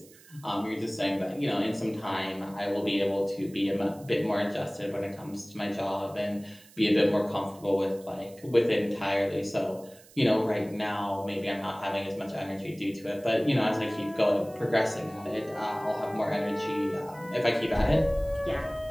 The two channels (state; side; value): noise; right; hiss, 24 dB below the sound